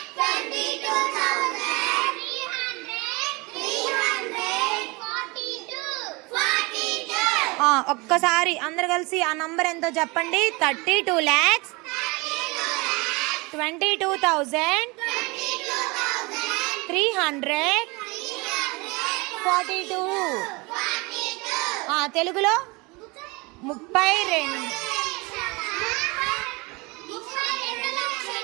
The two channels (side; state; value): left; quieter; 26.1 dB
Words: 32,000. ఒక్కసారి అందరు కలిసి ఆ నంబర్ ఎంతో చెప్పండి. 32 lakhs 22,300 42. తెలుగులో 32.